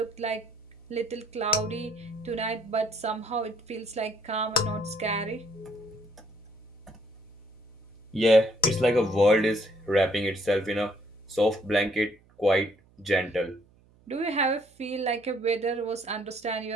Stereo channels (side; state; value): right; noise; hum, 30 dB below the sound